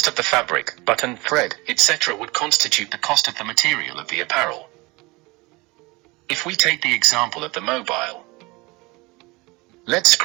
of the fabric, button, thread, etc. would constitute the cost of the material of the apparel. If we take the example of the mobile, LED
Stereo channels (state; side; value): quieter; left; 24.1 dB